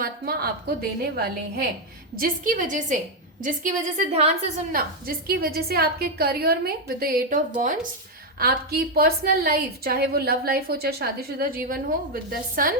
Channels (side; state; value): both; normal; correlation 0.03